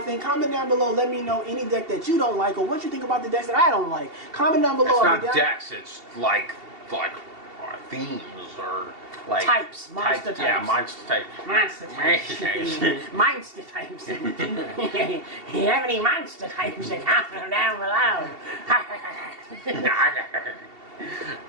Comment down below. Let me know any deck that you don't like or what you think about the decks that I don't like. Comment down below. It's not decks, it's like themes or like types. Monster types. Yeah, monster type. Monster types. Monster types. You have any monster types? Comment down below.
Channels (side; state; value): left; late; 2.7 ms